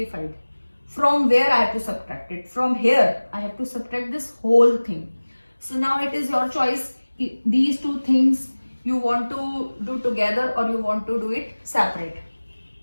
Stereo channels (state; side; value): inverted; both; correlation -1.00